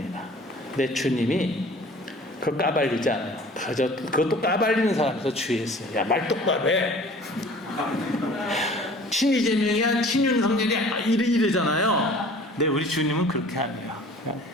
내 주님이 그걸 까발리지 않아요. 그것도 까발리는 사람에서 주의했어요. 야, 말 똑바로 해. 친이재명이야, 친윤석열이야, 이러잖아요. 근데 우리 주님은 그렇게 안 해요.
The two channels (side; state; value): both; normal; correlation 0.47